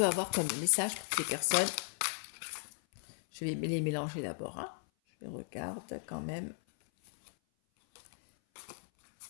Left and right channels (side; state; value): right; silent; 54 dB below the other